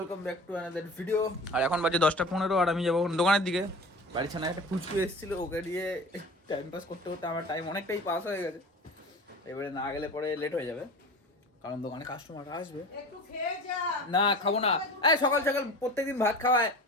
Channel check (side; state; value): both; normal; correlation 0.37